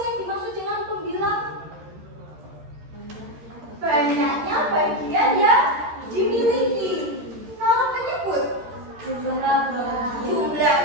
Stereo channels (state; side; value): late; left; 13 ms